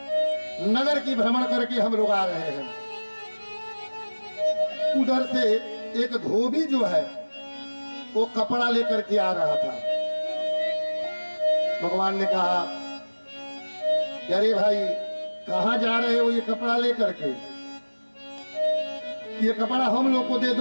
नगर की भ्रमण करके हम लोग आ रहे हैं। उधर से एक धोबी जो है वो कपड़ा लेकर के आ रहा था। भगवान ने कहा, अरे भाई कहां जा रहे हो ये कपड़ा लेकर के, ये कपड़ा हम लोग को दे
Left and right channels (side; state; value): both; inverted; correlation -1.00